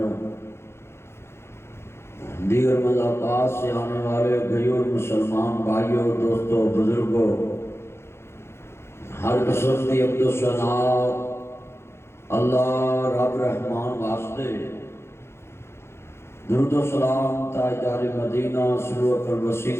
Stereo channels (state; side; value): late; right; 0.12 ms